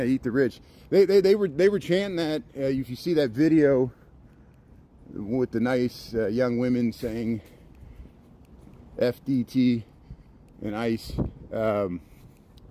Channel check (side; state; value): both; identical; correlation 1.00